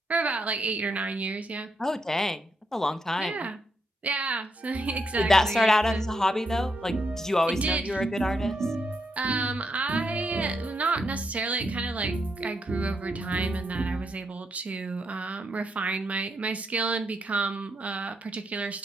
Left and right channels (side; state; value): both; normal; correlation 0.80